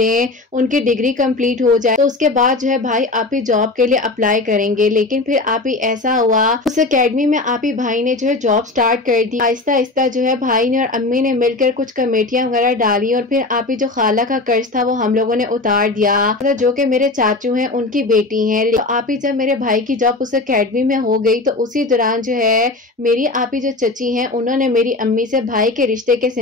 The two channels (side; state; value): right; quieter; 3.2 dB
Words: उनकी डिग्री कंप्लीट हो जाए तो उसके बाद जो है भाई आप ही जॉब के लिए अप्लाई करेंगे। लेकिन फिर आप ही ऐसा हुआ उस एकेडमी में आप ही भाई ने जो है जॉब स्टार्ट कर दी। आहिस्ता आहिस्ता जो है भाई ने और अम्मी ने मिलकर कुछ कमेटियां वगैरह डाली और फिर आप ही जो खाला का कर्ज था वो हम लोगों ने उतार दिया, जो कि मेरे चाचू हैं उनकी बेटी हैं। तो आप ही जब मेरे भाई की जॉब उस एकेडमी में हो गई तो उसी दौरान जो है मेरी आप ही जो चची हैं उन्होंने मेरी अम्मी से भाई के रिश्ते के